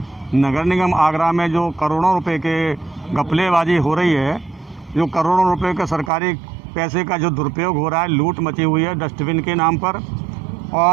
नगर निगम आगरा में जो करोड़ों रुपए के घपलेबाजी हो रही है, जो करोड़ों रुपए का सरकारी पैसे का जो दुरुपयोग हो रहा है, लूट मची हुई है डस्टबिन के नाम पर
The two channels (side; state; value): left; drops out; at 6.1 s